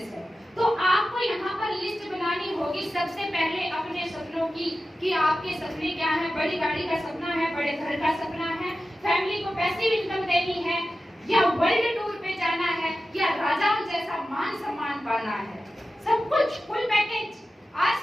है, तो आपको यहाँ पर लिस्ट बनानी होगी सबसे पहले अपने सपनों की, कि आपके सपने क्या है। बड़ी गाड़ी का सपना है, बड़े घर का सपना है, फैमिली को पैसिव इनकम देनी है, या वर्ल्ड टूर पे जाना है, या राजाओं जैसा मान सम्मान पाना है, सब कुछ फुल पैकेज।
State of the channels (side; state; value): both; normal; correlation 0.93